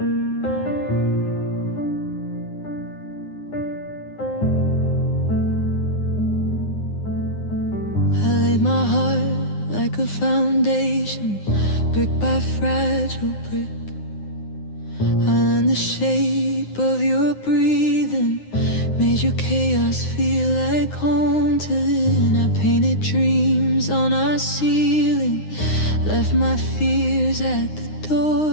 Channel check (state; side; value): late; right; 9.7 ms